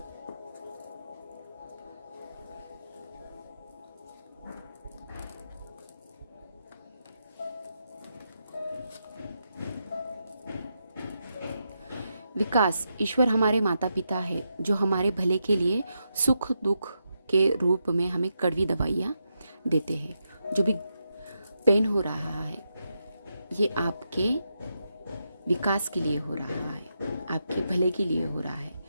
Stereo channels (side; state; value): both; inverted; correlation -0.84